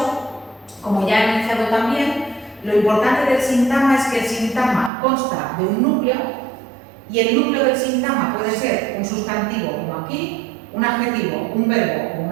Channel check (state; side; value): drops out; left; at 4.9 s